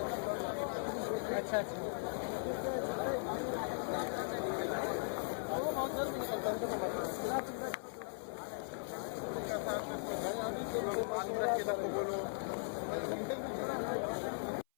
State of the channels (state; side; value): silent; right; 52 dB below the other